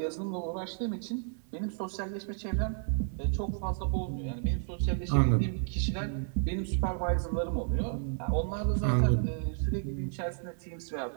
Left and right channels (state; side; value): silent; left; 57 dB below the other